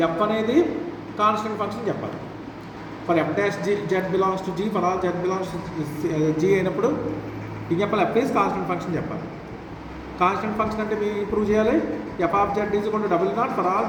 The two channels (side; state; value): both; identical; correlation 1.00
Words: ఎఫ్ అనేది కాన్స్టెంట్ ఫంక్షన్ చెప్పాలి. For F dash G Z belongs to G, for all Z belongs to G అయినప్పుడు ఇది చెప్పాలి. ఎఫ్ ఈజ్ కాన్స్టెంట్ ఫంక్షన్ చెప్పాలి. కాన్స్టెంట్ ఫంక్షన్ అంటే మీరు ప్రూవ్ చేయాలి. F of Z is equal to double naught for all